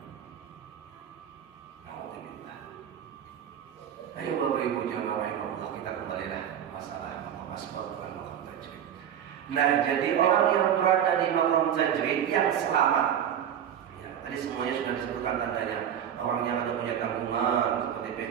Alhamdulillah. Ayo Bapak Ibu jamaah rahimahullah, kita kembalilah masalah maqam asbab dan maqam tajrid. Nah, jadi orang yang berada di maqam tajrid yang selamat. Ya, tadi semuanya sudah disebutkan tandanya. Orang yang ada punya tanggungan, seperti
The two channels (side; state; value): left; quieter; 9.4 dB